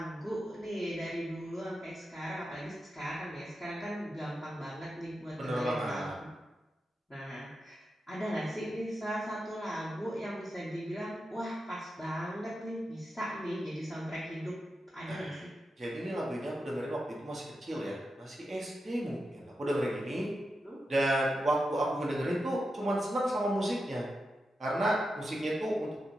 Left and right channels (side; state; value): both; normal; correlation 0.89